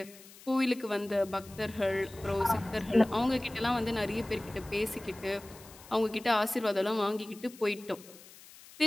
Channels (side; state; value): left; noise; hiss, 20 dB below the sound